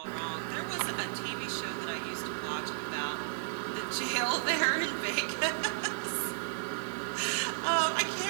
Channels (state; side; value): silent; left; 55 dB below the other